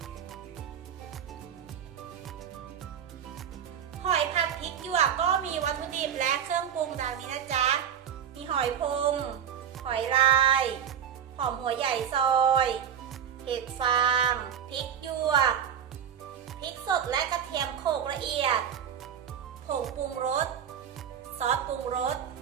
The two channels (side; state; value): left; quieter; 8.6 dB